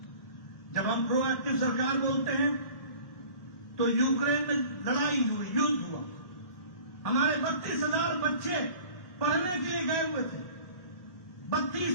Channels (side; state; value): right; late; 1.4 ms